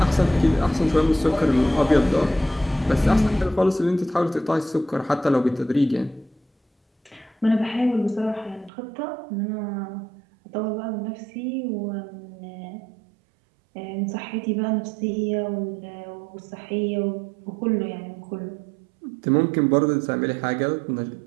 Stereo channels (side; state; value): left; drops out; at 8.7 s